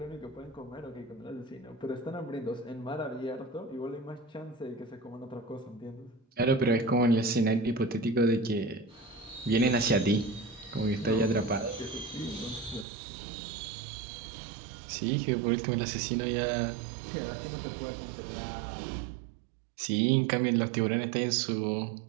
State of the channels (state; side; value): drops out; left; at 12.9 s